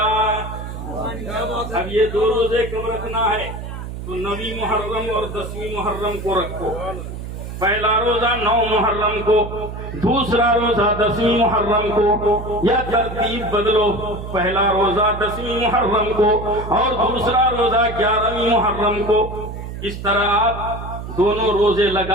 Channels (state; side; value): noise; right; hum, 8 dB below the sound